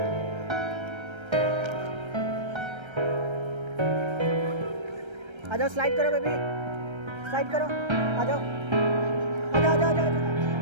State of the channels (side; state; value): left; late; 1.3 ms